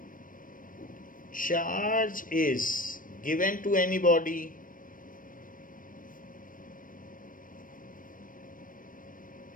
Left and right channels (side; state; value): right; late; 0.40 ms